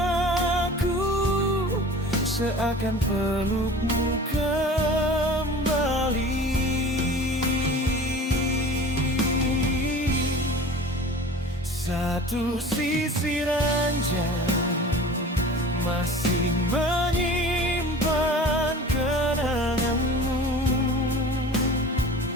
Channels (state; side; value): normal; both; correlation 0.40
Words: seakan pelukmu kembali. Satu sisi ranjang masih menyimpan kenanganmu.